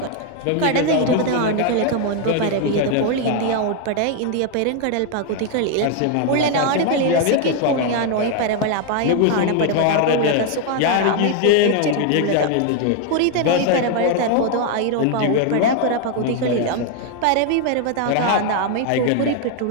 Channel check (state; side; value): different; both; correlation 0.00